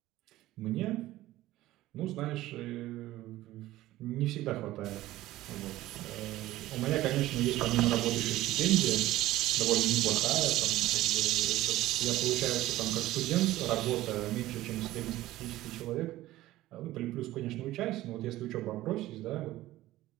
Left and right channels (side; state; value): left; quieter; 16.0 dB